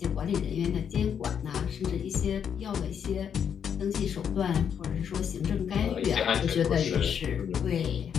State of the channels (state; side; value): quieter; right; 7.9 dB